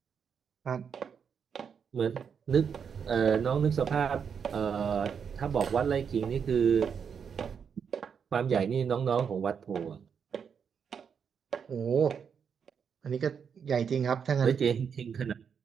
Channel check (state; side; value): quieter; left; 6.9 dB